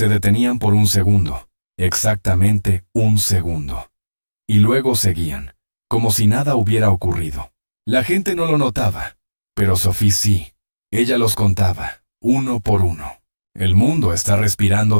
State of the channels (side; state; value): both; inverted; correlation -1.00